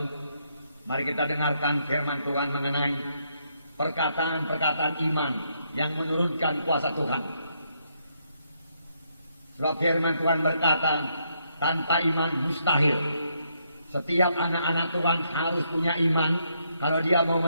mari kita dengarkan firman Tuhan mengenai perkataan-perkataan iman yang menurunkan kuasa Tuhan. Sebab firman Tuhan berkata, tanpa iman mustahil. Setiap anak-anak Tuhan harus punya iman kalau dia mau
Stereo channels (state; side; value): inverted; both; correlation -0.75